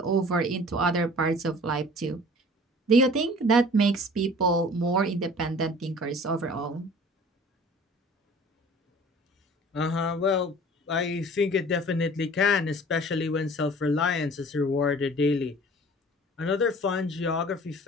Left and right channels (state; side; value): normal; both; correlation 0.47